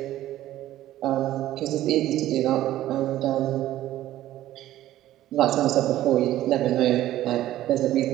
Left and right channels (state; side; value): quieter; left; 13.9 dB